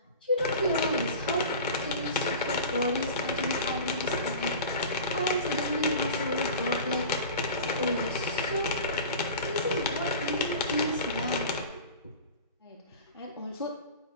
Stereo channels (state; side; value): inverted; both; correlation -0.36